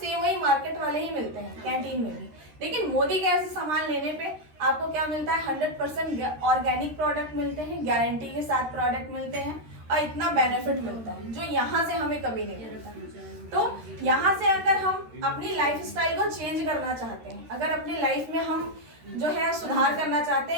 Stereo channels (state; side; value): late; left; 13 ms